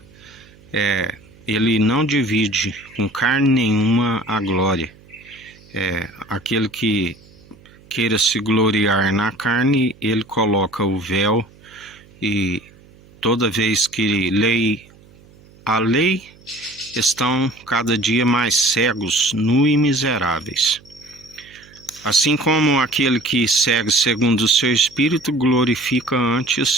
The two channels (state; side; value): noise; right; hum, 26 dB below the sound